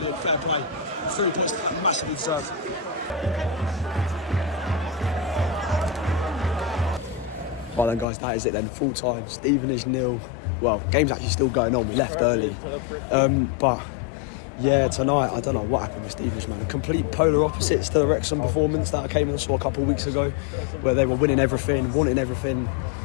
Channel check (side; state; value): right; drops out; at 8.1 s